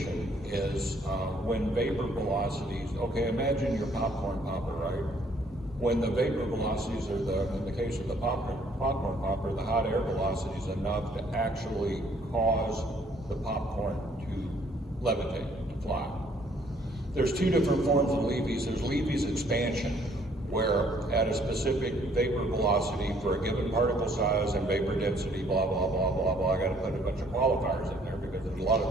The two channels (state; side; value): normal; both; correlation 0.63